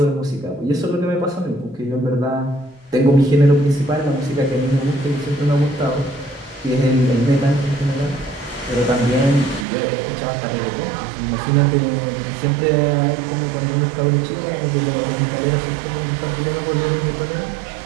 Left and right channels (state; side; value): drops out; left; at 9.7 s